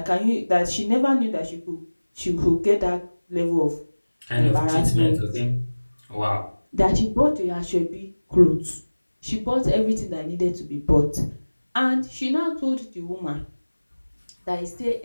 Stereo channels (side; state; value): both; inverted; correlation -1.00